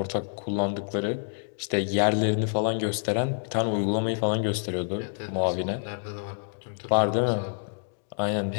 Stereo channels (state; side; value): silent; right; digital silence